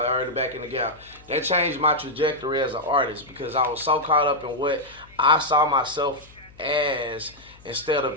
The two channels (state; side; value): noise; left; hum, 24 dB below the sound